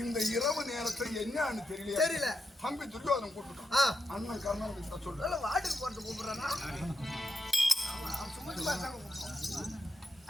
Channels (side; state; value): both; normal; correlation 0.84